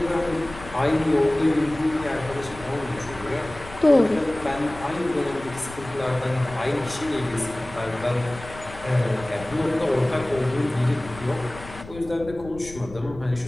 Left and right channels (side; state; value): left; noise; rumble, 16 dB below the sound